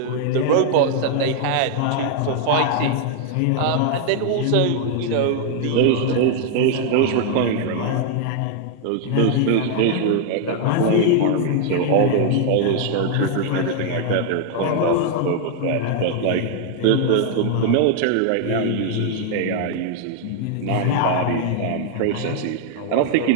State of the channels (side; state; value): both; different; correlation 0.00